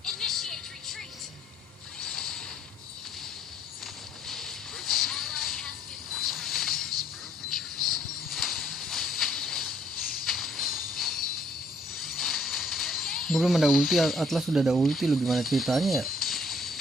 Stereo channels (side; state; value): both; normal; correlation 0.64